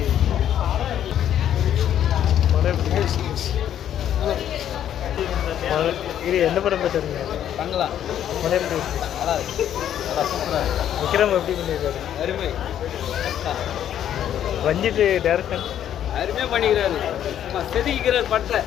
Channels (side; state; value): right; quieter; 10.4 dB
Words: படம் எப்படி இது என்ன படம் போயிட்டு வரீங்க? தங்கலாம் படம் எப்படி இருக்கு? நல்லா இருக்கு. நல்லா சூப்பராக இருக்கு. விக்ரம் எப்படி பண்ணியிருக்காரு? அருமை ரஞ்சித் டேரக்ஷன் அருமையாக பண்ணிக்கிறாரு. செதுக்கிறார் பட்டை